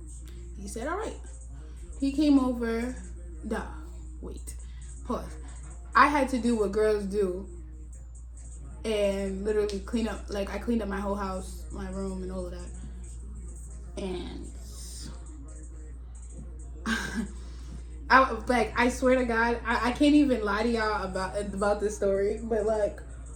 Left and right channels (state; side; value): identical; both; correlation 1.00